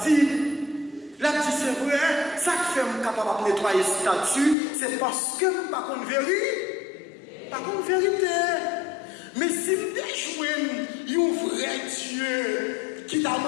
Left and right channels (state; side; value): drops out; right; at 4.5 s